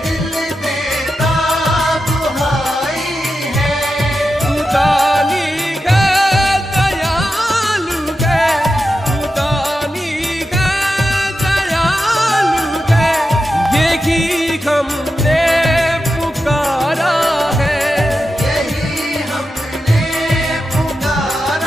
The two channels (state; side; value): normal; both; correlation 0.90